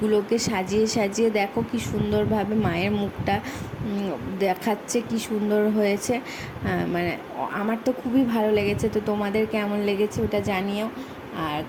সাজিয়ে সাজিয়ে দেখো কি সুন্দরভাবে মায়ের মুখটা দেখাচ্ছে, কি সুন্দর হয়েছে। মানে আমার তো খুবই ভালো লেগেছে, তো তোমাদের কেমন লেগেছে ওটা জানিও আর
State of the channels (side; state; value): both; identical; correlation 1.00